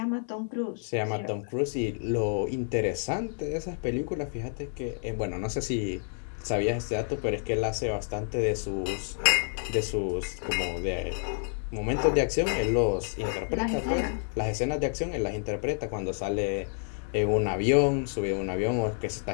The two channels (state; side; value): silent; right; 58 dB below the other